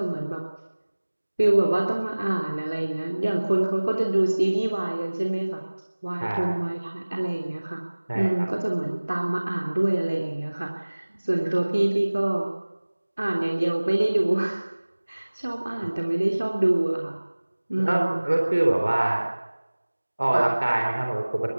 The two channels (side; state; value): both; inverted; correlation -1.00